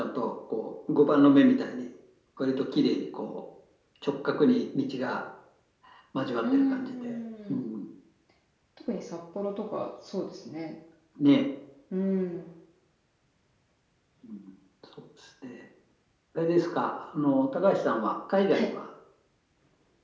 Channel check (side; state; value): both; identical; correlation 1.00